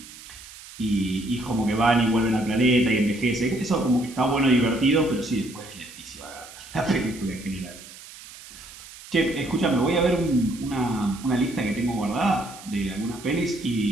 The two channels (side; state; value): right; noise; hiss, 17 dB below the sound